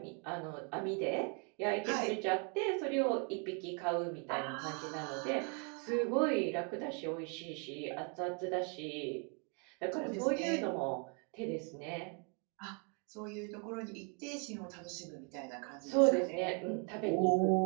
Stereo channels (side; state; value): left; quieter; 36.0 dB